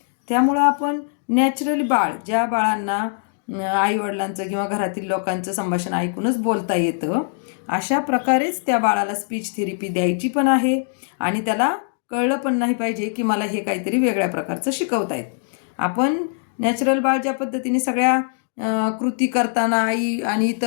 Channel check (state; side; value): silent; right; digital silence